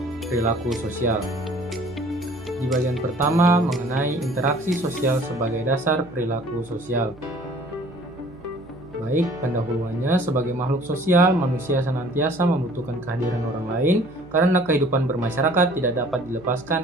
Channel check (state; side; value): noise; right; hum, 23 dB below the sound